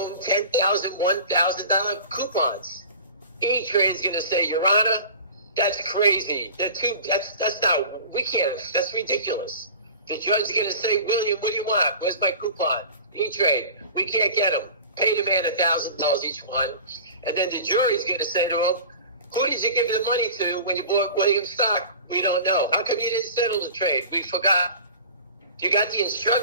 10,000, $1,000 coupons. E-Trade's going to say, Your Honor, that's crazy. That's not, we can't, that's ridiculous. The judge's going to say, William, what do you want? Where's my coupon? E-Trade, we can't get them. Pay the man $1,000 each one. And then the jury's going to say to him, who did you give the money to when you bought William's stock? We don't know. How come you didn't settle the trade? We forgot. You got the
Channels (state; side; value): inverted; both; correlation -0.39